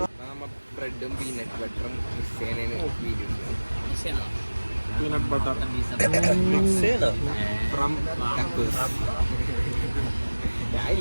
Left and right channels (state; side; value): inverted; both; correlation -1.00